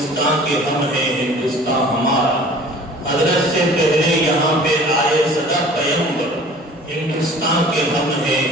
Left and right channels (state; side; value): normal; both; correlation 0.47